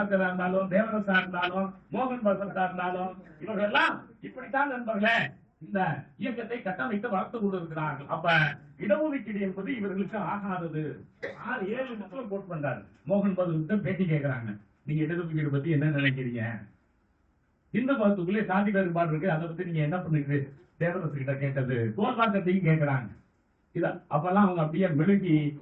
இருந்தாலும், தேவரசா இருந்தாலும், மோகன் பகவதா இருந்தாலும், இவர்கள் எல்லாம் இப்படித்தான் நண்பர்களே இந்த இயக்கத்தை கட்டமைத்து வளர்த்து கொண்டிருக்கிறார்கள். அப்ப இடஒதுக்கீடு என்பது இவர்களுக்கு ஆகாதது. 6-7 மக்கள் கோட் பண்றாரு. மோகன் பகவத் பேட்டி கேட்கிறாங்க, நீங்க இடஒதுக்கீடு பத்தி என்ன நினைக்கிறீங்க? இந்து மதத்துக்குள்ளே சாதி வேறுபாடு இருக்கு, அதை பத்தி நீங்க என்ன பண்ணுங்க தேவரசு கிட்ட கேட்டது. கோல்வாக்கத்தையும் கேட்கிறாங்க. இத அப்பெல்லாம் அவங்க அப்படியே மெழுகி,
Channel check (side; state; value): both; identical; correlation 1.00